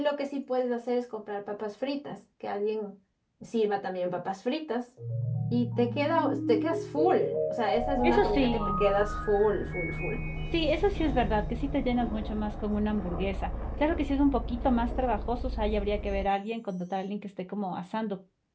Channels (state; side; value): identical; both; correlation 1.00